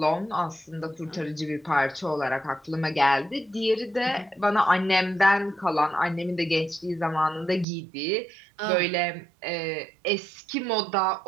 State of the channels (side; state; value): left; drops out; at 7.7 s